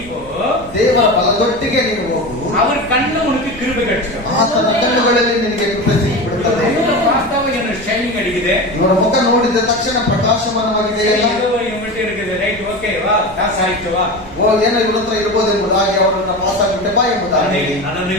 போ, ದೇವರ ಬಲದೊಟ್ಟಿಗೆ ನೀನು ಹೋಗು, அவர் ಕಣ್ಣು உனக்கு கிருபை கிடைச்சிடும். ಆತನ ಕಣ್ಣುಗಳಲ್ಲಿ ನಿನಗೆ ಕೃಪೆ ಸಿಕ್ಕಿಬಿಡುತ್ತದೆ. பார்த்தாவே எனக்கு ஷைனிங் அடிக்குது, ಇವರ ಮುಖ ನೋಡಿದ ತಕ್ಷಣ ಪ್ರಕಾಶಮಾನವಾಗಿದೆ. இவங்கிட்ட இருக்குது, ரைட் ஓகே வா, பாಸ್ ಆಯ್ತು ವா, ಏನೋ ಇವ್ರ ಹತ್ರ ಇರ್ಬೋದು ಎಂಬುದಾಗಿ ಅವರನ್ನ ಪಾಸ್ ಆಗಿಬಿಟ್ಟೆ ಬಾ ಎಂಬುದಾಗಿ.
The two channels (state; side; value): noise; right; rumble, 19 dB below the sound